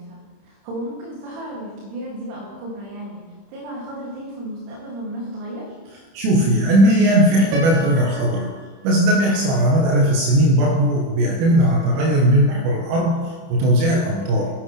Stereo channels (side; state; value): left; late; 30 ms